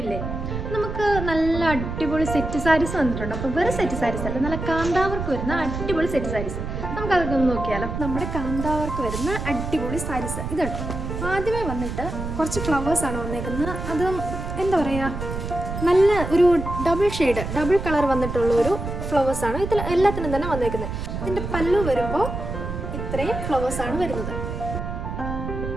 നമുക്ക് നല്ല അടിപൊളി സെറ്റ് സാരീസ് വന്നിട്ടുണ്ട്. അപ്പോൾ വെറും സെറ്റ് സാരീസ് അല്ല, നല്ല കാന്താവർക്ക് വരുന്ന അടിപൊളി സെറ്റ് സാരീസ്. നമുക്കതൊക്കെ ഒന്ന് നോക്കിയാലോ. നമ്മുടെ കാന്താവർക്ക് വരുന്ന അടിപൊളി സാരീസ് ഇതുണ്ട്. ആദ്യമേ വന്നിട്ട് കുറച്ച് ഫ്ലവേഴ്സാണ് വന്നേക്കുന്നത്. അത് എന്താ പറയുക, നല്ല ഒരു ഡബിൾ കളർ വന്നിട്ടുള്ള ഒരു ഫ്ലവേഴ്സാണ് ഇതിൽ എല്ലാത്തിനും തന്നെ വന്നേക്കുന്നത്. ഇതിൻ്റെ പല്ലു വരുമ്പോൾ ഇത്രയും ഫ്ലവേഴ്സാണ് വരുന്നത്.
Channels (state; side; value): noise; right; rumble, 5 dB below the sound